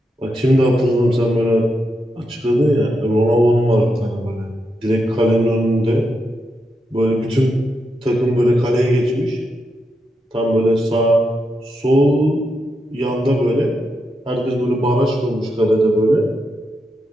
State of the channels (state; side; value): normal; both; correlation 0.84